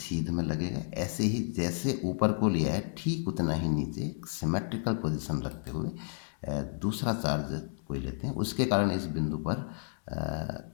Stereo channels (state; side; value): silent; right; 57 dB below the other